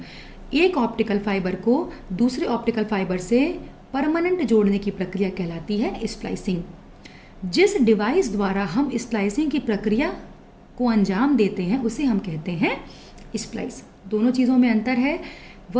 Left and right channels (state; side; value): identical; both; correlation 1.00